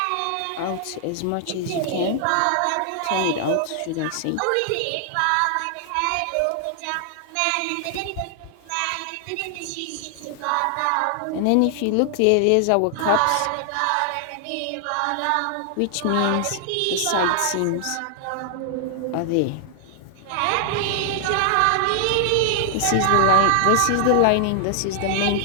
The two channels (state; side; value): different; both; correlation 0.00